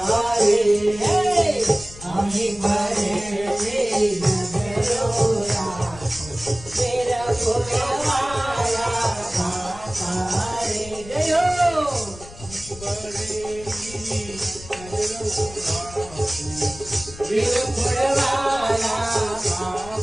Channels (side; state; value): left; noise; rumble, 16 dB below the sound